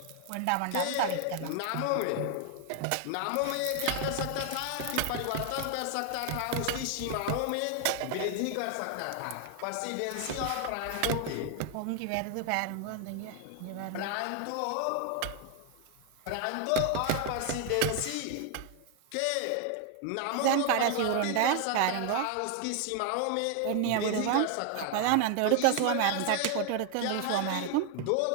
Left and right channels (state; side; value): different; both; correlation 0.00